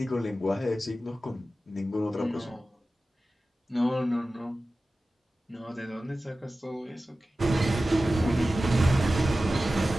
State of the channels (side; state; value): both; normal; correlation 0.95